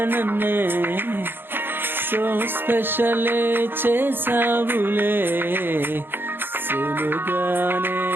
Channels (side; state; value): left; late; 0.10 ms